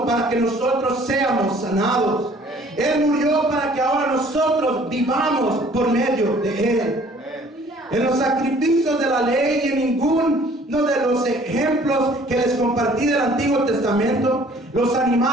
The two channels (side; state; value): both; normal; correlation 0.55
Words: para que nosotros seamos sanados. Él murió para que ahora nosotros vivamos por medio de Él. En los sacrificios de la ley y en ninguno de los ejemplos que les compartí del Antiguo Testamento, los